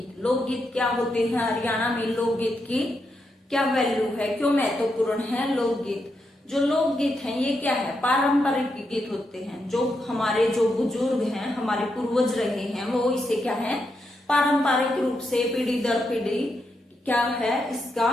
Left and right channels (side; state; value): both; normal; correlation 0.83